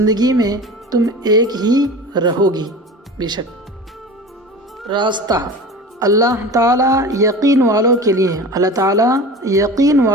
میں تم ایک ہی رہو گی۔ بے شک راستہ۔ اللہ تعالیٰ یقین والوں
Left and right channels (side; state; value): both; normal; correlation 0.35